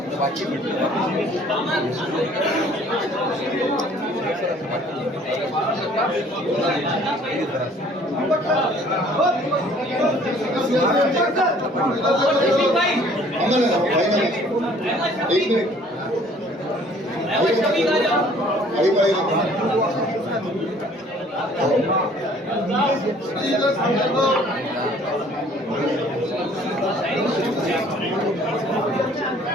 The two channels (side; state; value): both; normal; correlation 0.56